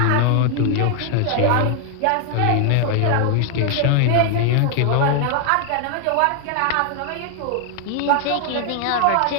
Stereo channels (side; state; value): both; different; correlation 0.00